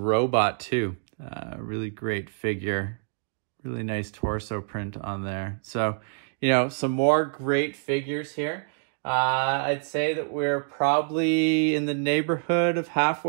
too. Really great figure. Really nice torso print on there. So, you know, some more great figures here. I'd say that we're probably in the neighborhood of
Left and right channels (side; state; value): left; silent; digital silence